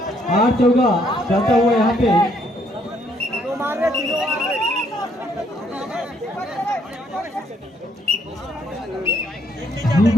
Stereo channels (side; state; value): both; normal; correlation 0.69